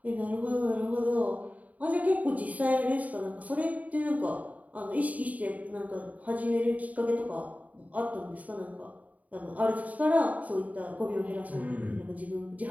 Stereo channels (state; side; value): late; left; 0.072 ms